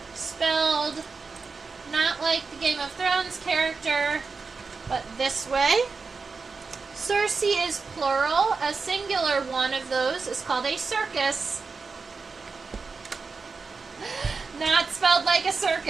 spelled not like the Game of Thrones character, but this way. Circe is plural. A singular one of those is called a circus. Not spelled like a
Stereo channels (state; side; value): quieter; left; 4.6 dB